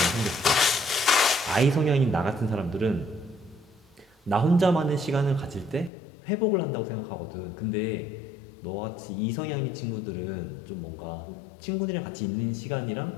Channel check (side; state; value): right; drops out; at 5.9 s